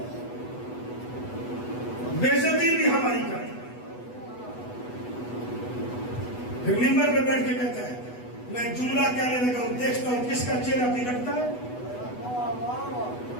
بے عزتی بھی ہماری کرتا ہے. پھر ممبر پہ بیٹھ کے کہتا ہے میں جملہ کہنے لگا ہوں، دیکھتا ہوں کس کا چہرہ بگڑتا ہے،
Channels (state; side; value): late; right; 8.1 ms